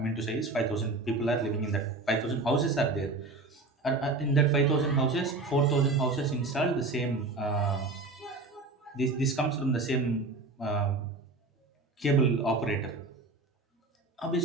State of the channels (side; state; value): left; quieter; 3.3 dB